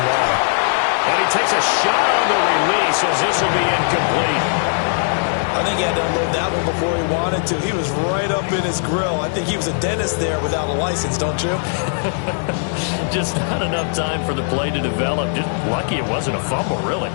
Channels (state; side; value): silent; right; 66 dB below the other